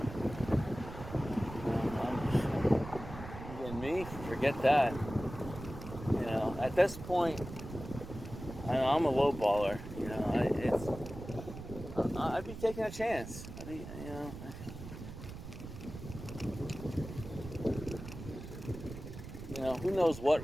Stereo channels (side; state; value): right; noise; rumble, 11 dB below the sound